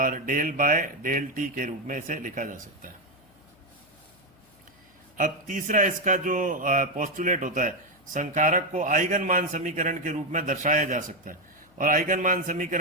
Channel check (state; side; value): noise; left; hum, 30 dB below the sound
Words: डेल बाय डेल टी के रूप में इसे लिखा जा सकता है। अब तीसरा इसका जो पोस्टुलेट होता है, संकारक को आइगन मान समीकरण के रूप में दर्शाया जा सकता है। और आइगन मान